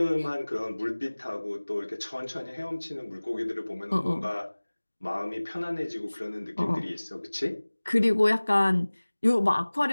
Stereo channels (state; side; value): inverted; both; correlation -1.00